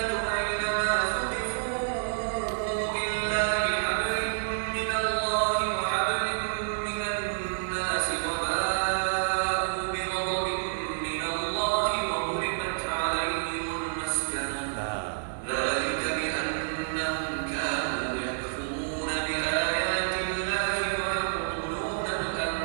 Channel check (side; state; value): left; silent; 56 dB below the other